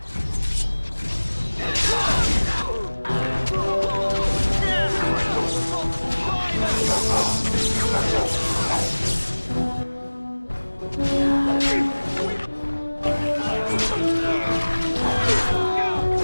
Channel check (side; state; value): both; inverted; correlation -1.00